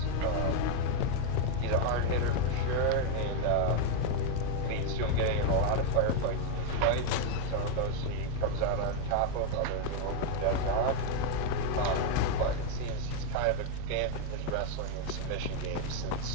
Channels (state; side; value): different; both; correlation 0.01